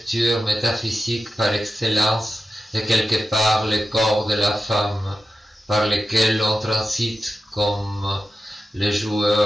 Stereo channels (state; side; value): normal; both; correlation 0.91